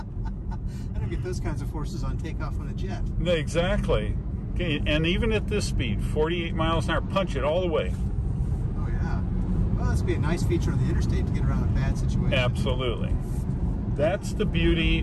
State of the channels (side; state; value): both; identical; correlation 1.00